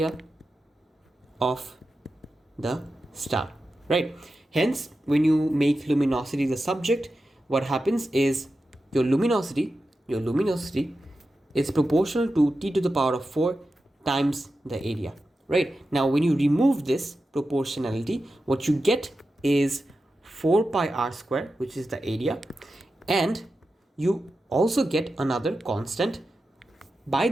star, right? Hence, when you make luminosity the subject, what happens is your luminosity is proportional to t to the power of 4 times the area, right? Now when you remove this proportionality, what you get is 4 pi r square, which is the area, and you also get another constant by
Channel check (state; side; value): normal; both; correlation 0.91